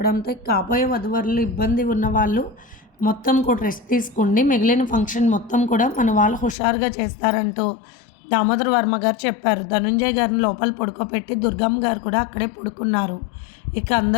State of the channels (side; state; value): right; drops out; at 6.6 s